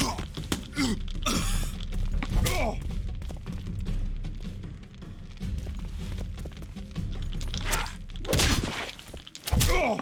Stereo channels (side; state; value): both; identical; correlation 1.00